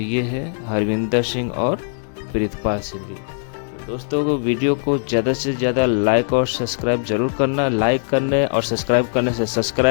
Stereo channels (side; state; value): right; silent; 65 dB below the other